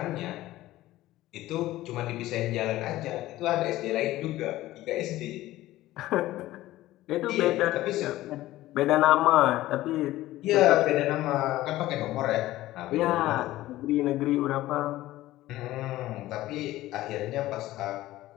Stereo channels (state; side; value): quieter; right; 16.1 dB